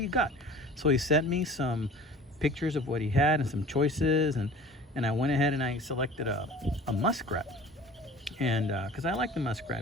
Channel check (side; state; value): both; normal; correlation 0.43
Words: you got? So he sent me some pictures of what he had and some choices, and I went ahead and I selected a muskrat. And because I like the